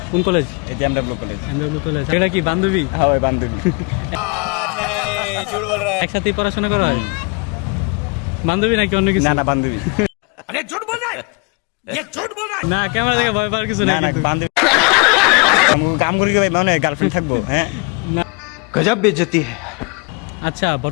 কোন কলেজ? এই এমডব্লিউ কলেজ। MW college. এটা কি বান্ধবী? হ্যাঁ ওই বান্ধবী। একসাথে পড়াশোনা করা হয়? বান্ধবী নাকি অন্য কিছু? না না বান্ধবী। अरे झूठ बोल रहा है, ये झूठ बोल रहा है। না ক্যামেরা দেখে ভয় পাওয়ার কিছু না নাই না কিন্তু। বান্ধবী। কাম করি কি ভাই মানে গার্লফ্রেন্ড থাকবো? হ্যাঁ गजब बेइज्जती है। আচ্ছা,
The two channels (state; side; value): quieter; right; 31.5 dB